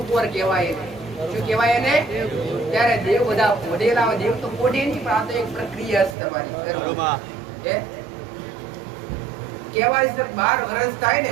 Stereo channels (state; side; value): drops out; left; at 6.2 s